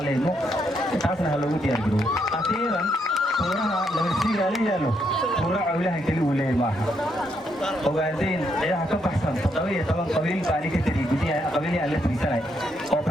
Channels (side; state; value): both; normal; correlation 0.76